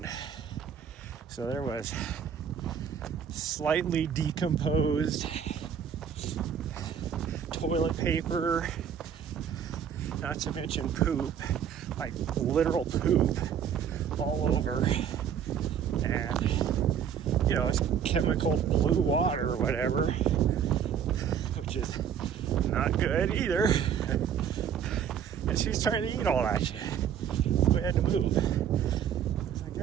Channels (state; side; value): quieter; left; 8.3 dB